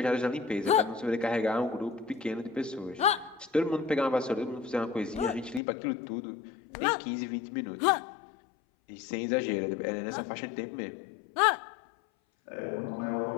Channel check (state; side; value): drops out; right; at 5.6 s